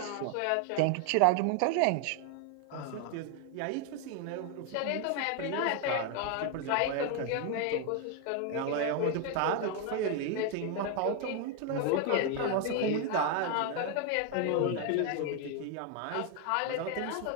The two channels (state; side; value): different; both; correlation 0.01